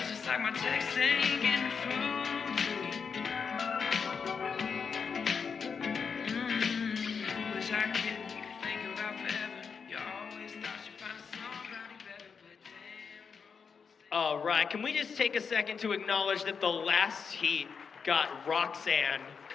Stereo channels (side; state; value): right; quieter; 6.0 dB